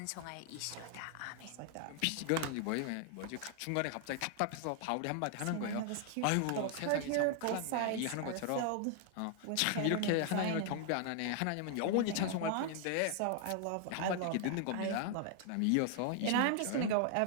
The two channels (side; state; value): both; different; correlation 0.00